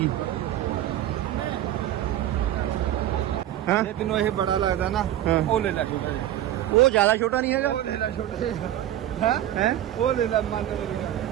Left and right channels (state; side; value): quieter; left; 12.6 dB